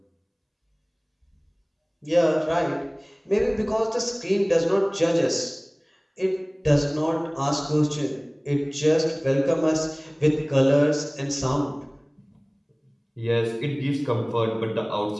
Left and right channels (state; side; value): identical; both; correlation 1.00